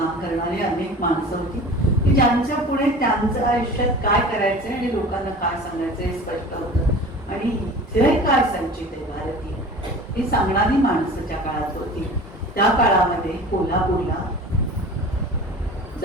करणारे अनेक माणसं होती की ज्यांच्या पुढे त्यांचं आयुष्यात काय करायचंय आणि लोकांना काय सांगायचं हे स्पष्ट होतं. आणि इथे काय संचित आहे भारतीय ही सांगणारी माणसं त्या काळात होती. त्या काळामध्ये कोल्हापूरला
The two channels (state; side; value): normal; both; correlation 0.39